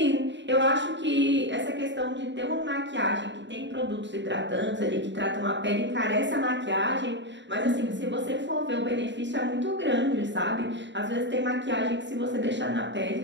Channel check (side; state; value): left; late; 0.53 ms